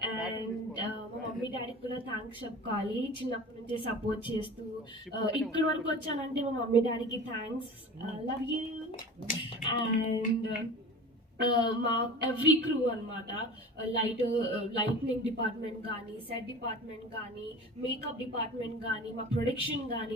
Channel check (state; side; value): normal; both; correlation 0.37